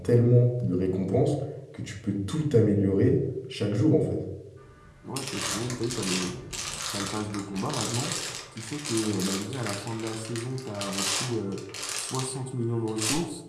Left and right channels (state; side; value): identical; both; correlation 1.00